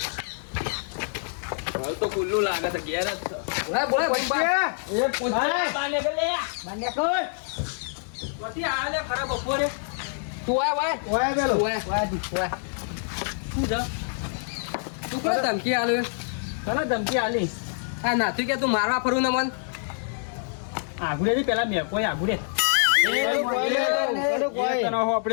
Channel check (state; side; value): silent; right; digital silence